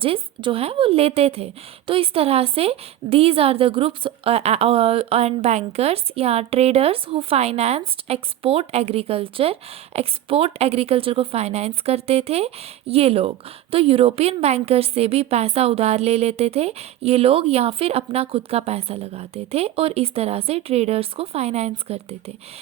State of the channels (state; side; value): quieter; left; 12.7 dB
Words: जो हैं वो लेते थे। तो इस तरह से these are the groups and bankers या traders who financed export agriculture को फाइनेंस करते थे ये लोग। तो यूरोपियन बैंकर्स से भी पैसा उधार ले लेते थे ये लोग, या फिर अपना खुद का पैसा लगाते थे और इस तरह से ट्रेडर्स को फाइनेंस करते थे।